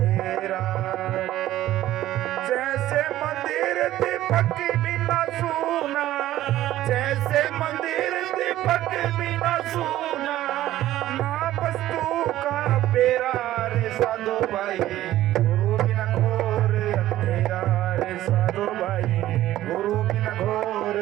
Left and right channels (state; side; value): quieter; left; 14.2 dB